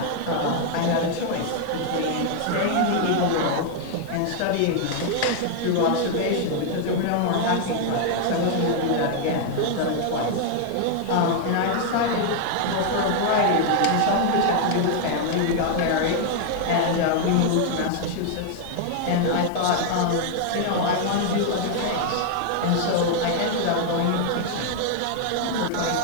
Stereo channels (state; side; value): different; both; correlation 0.00